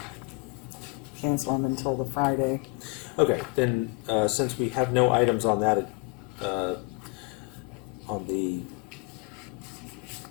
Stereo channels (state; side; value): quieter; right; 29.3 dB